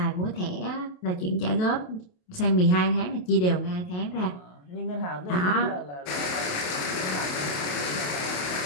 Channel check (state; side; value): late; right; 28 ms